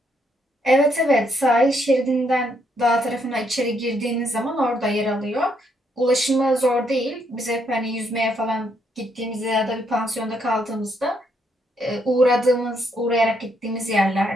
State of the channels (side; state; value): both; normal; correlation 0.74